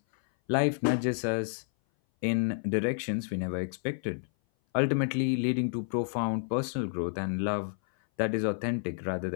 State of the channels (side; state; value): right; silent; 57 dB below the other